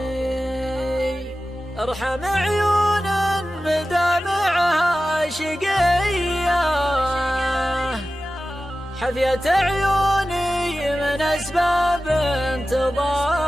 ارحم عيون مدامعها شقية، حفيت عيوني من أسباب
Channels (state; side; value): normal; both; correlation 0.95